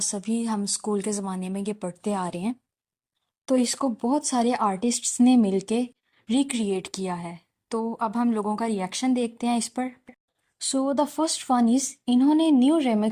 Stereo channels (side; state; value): both; identical; correlation 1.00